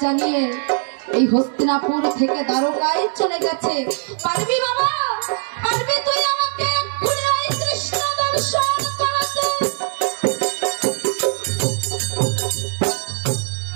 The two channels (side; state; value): left; silent; 63 dB below the other